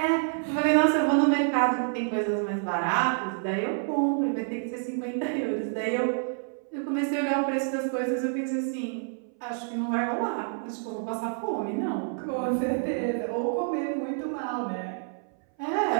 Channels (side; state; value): left; silent; 59 dB below the other